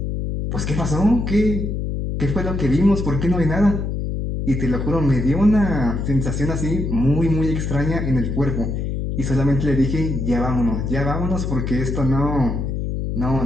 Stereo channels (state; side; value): noise; left; hum, 2 dB below the sound